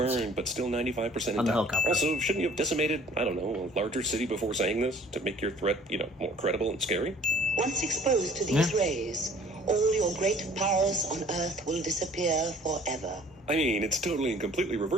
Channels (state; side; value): normal; both; correlation 0.53